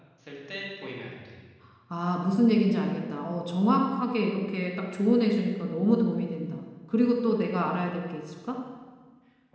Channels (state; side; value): identical; both; correlation 1.00